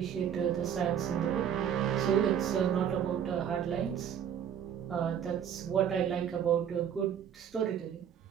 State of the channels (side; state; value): left; quieter; 8.8 dB